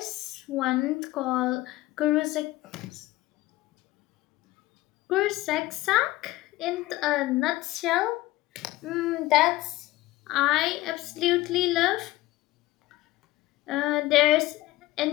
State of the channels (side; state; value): right; quieter; 17.9 dB